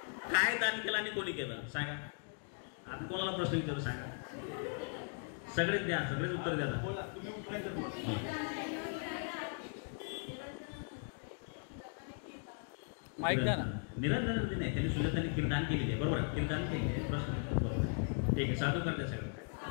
काय दान केलं आणि कोणी केलं सांगा. आता कोणाला प्रश्न विचारू सांगा. सगळेच द्या, सगळेच उत्तर द्या. माहित द्या ना. निरंतर नाही, त्यांनी सुजाताने खीरदान केलेली आहे. बरोबर आहे, खीरदान केले. प्रश्न बरोबर आहे. ठीक आहे, साधू करते सगळं.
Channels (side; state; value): right; silent; 52 dB below the other